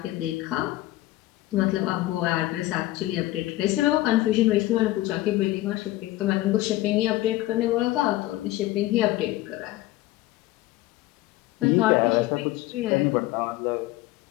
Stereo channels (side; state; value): right; quieter; 16.9 dB